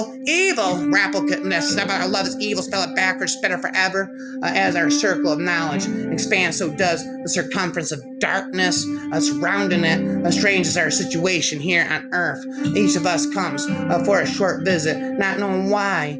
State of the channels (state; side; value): identical; both; correlation 1.00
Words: Rappelness, I love is evil, spell it backwards, better forever. As our circle of knowledge expands, so does the circumference of darkness surrounding it. Strange is our situation here on earth. Each of us comes for a short visit, not knowing why,